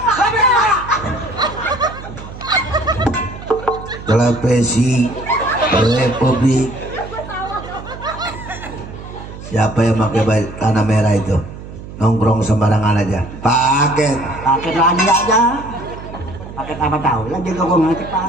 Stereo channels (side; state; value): right; noise; hum, 13 dB below the sound